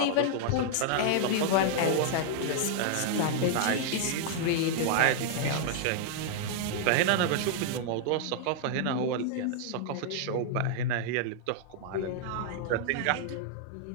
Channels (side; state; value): both; different; correlation -0.01